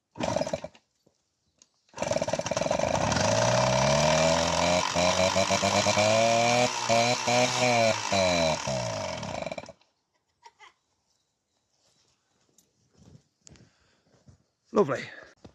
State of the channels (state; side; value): identical; both; correlation 1.00